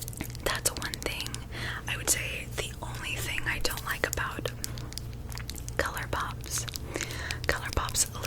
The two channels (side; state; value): both; identical; correlation 1.00